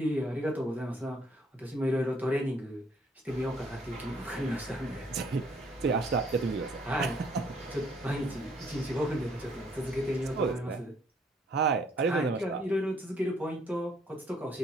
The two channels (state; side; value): normal; both; correlation 0.64